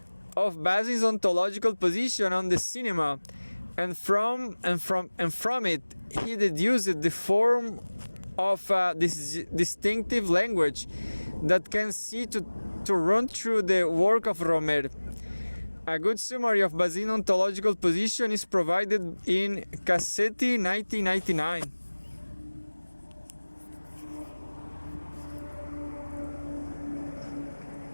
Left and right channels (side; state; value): both; inverted; correlation -1.00